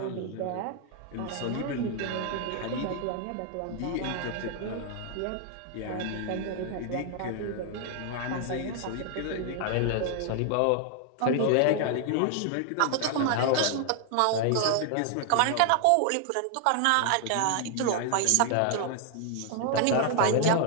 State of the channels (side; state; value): both; different; correlation 0.00